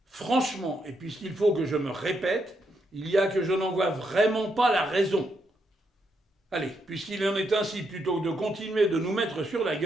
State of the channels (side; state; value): both; normal; correlation 0.79